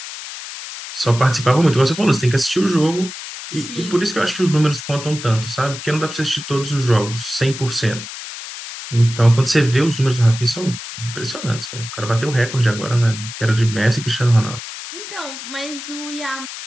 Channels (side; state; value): left; noise; hiss, 10 dB below the sound